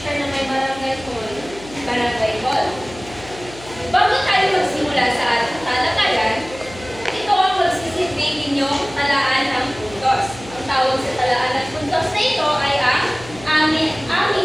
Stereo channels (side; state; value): left; noise; hum, 17 dB below the sound